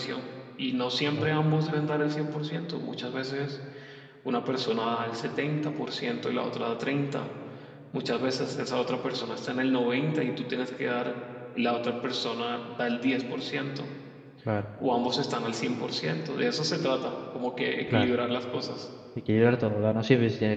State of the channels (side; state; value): both; identical; correlation 1.00